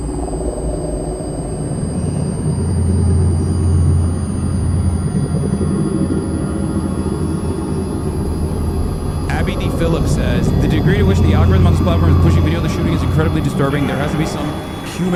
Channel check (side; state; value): both; identical; correlation 1.00